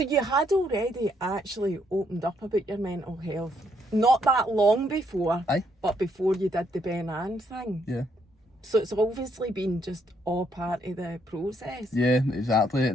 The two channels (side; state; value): both; normal; correlation 0.73